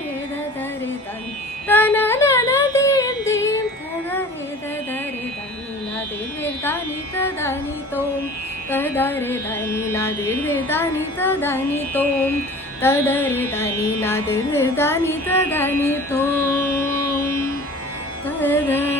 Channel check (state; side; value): normal; both; correlation 0.43